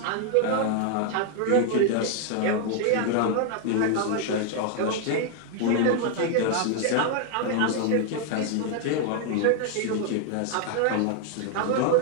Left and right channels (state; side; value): different; both; correlation 0.00